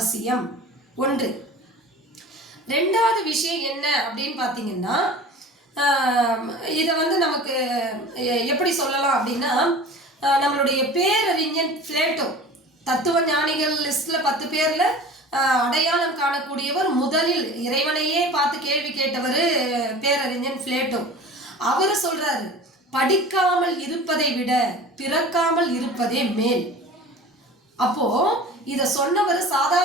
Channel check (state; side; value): normal; both; correlation 0.39